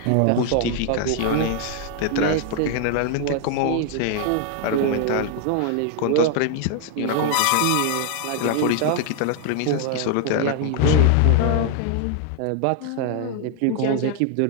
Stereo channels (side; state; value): both; different; correlation 0.00